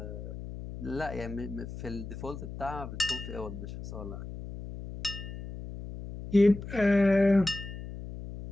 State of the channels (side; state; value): left; noise; hum, 10 dB below the sound